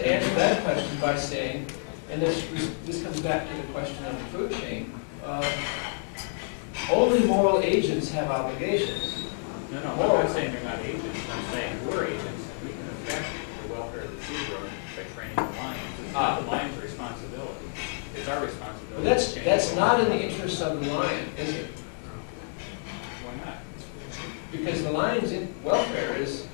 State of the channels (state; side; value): silent; right; 59 dB below the other